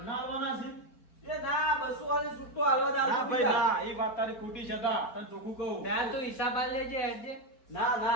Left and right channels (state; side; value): late; right; 4.4 ms